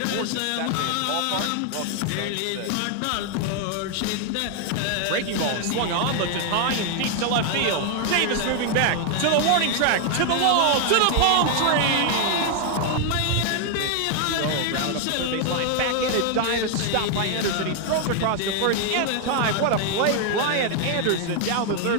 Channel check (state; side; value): different; both; correlation 0.00